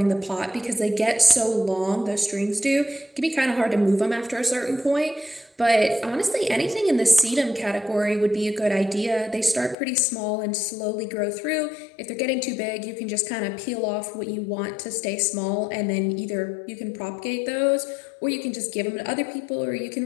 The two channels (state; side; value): drops out; right; at 9.8 s